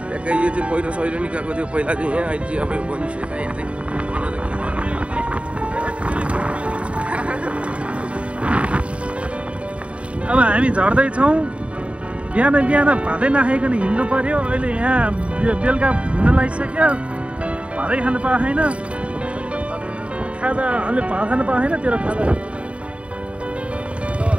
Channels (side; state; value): left; late; 0.062 ms